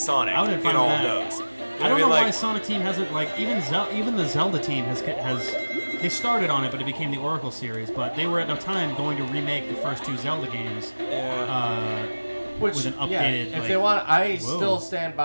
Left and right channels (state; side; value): inverted; both; correlation -1.00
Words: I would have in fun all with of that. those. You I don't know what why Like, Sonic Team hasn't like even the Zelda team has they started on it, but it became the Oracle series. But they were at the time going to remake the first two Zelda games. With an updated. If like, they want, I whoa. still stand